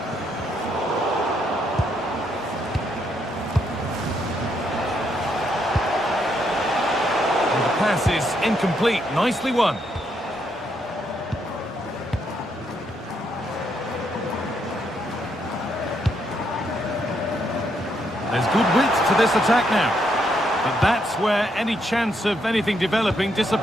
Pass is incomplete. Nicely won. There's good width to this attack now. But that's where any chance of anything developing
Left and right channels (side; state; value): both; normal; correlation 0.76